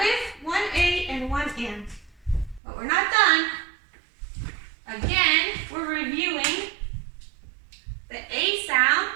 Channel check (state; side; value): drops out; left; at 2.6 s